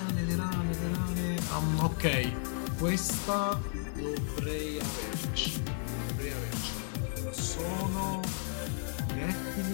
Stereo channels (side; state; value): right; silent; 56 dB below the other